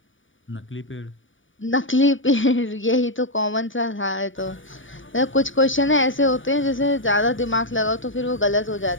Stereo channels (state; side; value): late; right; 0.57 ms